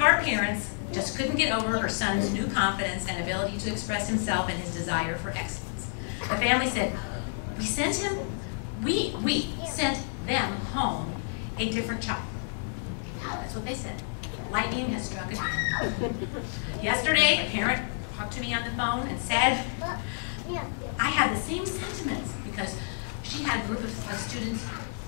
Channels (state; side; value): silent; right; digital silence